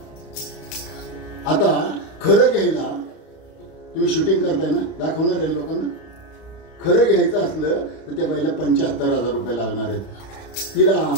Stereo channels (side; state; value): right; late; 31 ms